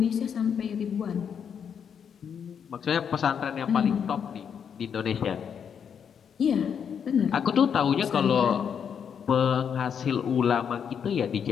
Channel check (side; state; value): right; quieter; 7.5 dB